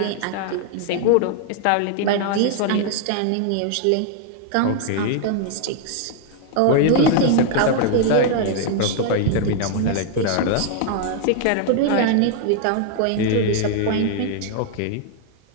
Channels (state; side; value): different; both; correlation 0.00